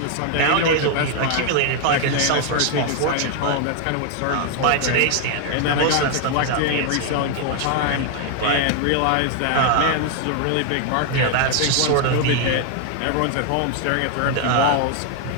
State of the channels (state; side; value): different; both; correlation 0.00